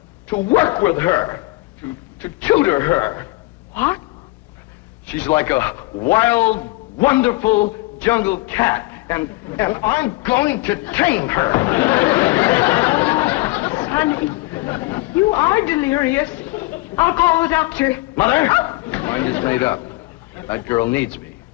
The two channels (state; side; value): quieter; right; 21.5 dB